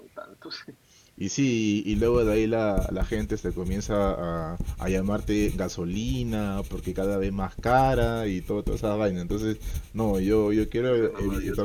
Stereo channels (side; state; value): both; identical; correlation 1.00